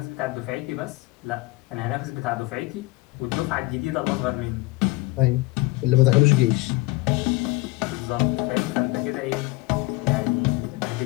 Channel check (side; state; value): right; quieter; 21.8 dB